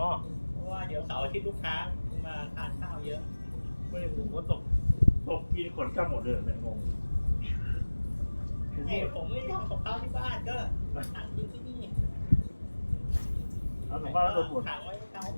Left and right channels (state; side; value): inverted; both; correlation -1.00